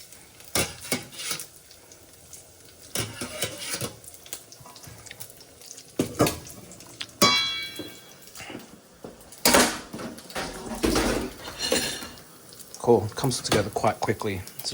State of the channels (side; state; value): both; identical; correlation 1.00